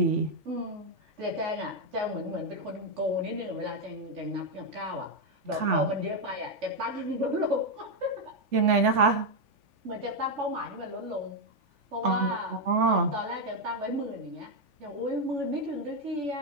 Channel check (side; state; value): left; late; 3.4 ms